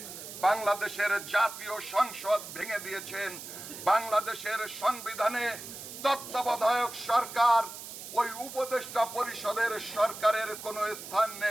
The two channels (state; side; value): noise; right; hiss, 11 dB below the sound